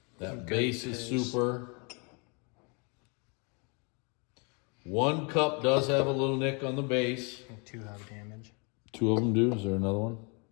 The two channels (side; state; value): right; quieter; 33.5 dB